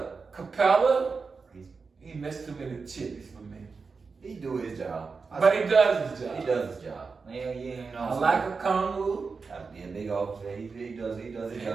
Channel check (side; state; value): left; quieter; 4.8 dB